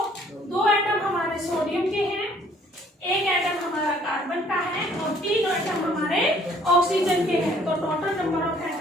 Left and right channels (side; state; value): both; normal; correlation 0.60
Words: 2 एटम हमारे सोडियम के हैं, 1 एटम हमारा कार्बन का है, और 3 एटम हमारे ऑक्सीजन के हैं, तो टोटल नंबर ऑफ